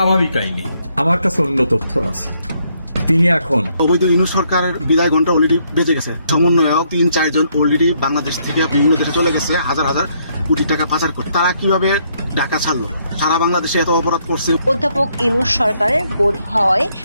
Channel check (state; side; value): inverted; both; correlation -0.71